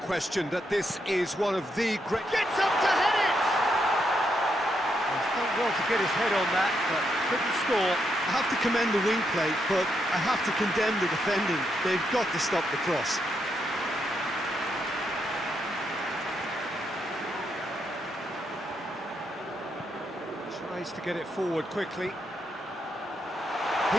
that this is one of the great... Gets up to head it! He's done well to get his head on that, but couldn't score. I have to commend the wing play, but I have to condemn the defending. They've got to stop the cross. Tries to get it forward quickly.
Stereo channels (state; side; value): normal; both; correlation 0.80